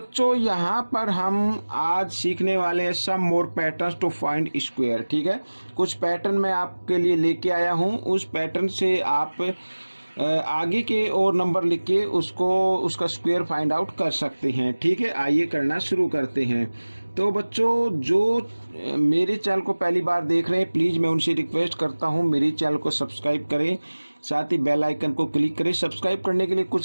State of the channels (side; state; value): both; inverted; correlation -1.00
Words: यहाँ पर हम आज सीखने वाले हैं सम मोर पैटर्न्स टू फाइंड स्क्वायर। ठीक है, कुछ पैटर्न मैं आपके लिए लेके आया हूँ। उस पैटर्न से आप आगे के और नंबर लिख के उसका स्क्वायर फाइंड आउट कर सकते हैं। ठीक है, आइए करना शुरू करते हैं। तो बच्चों, जो मेरे चैनल को पहली बार देख रहे हैं, प्लीज़ मैं उनसे रिक्वेस्ट करता हूं मेरे चैनल को सब्सक्राइब करें, साथ ही बेल आइकन को क्लिक करें। सब्सक्राइब करने के लिए